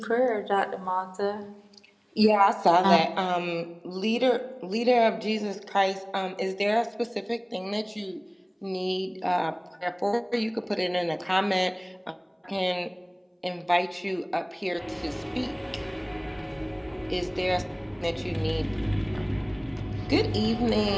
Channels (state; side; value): identical; both; correlation 1.00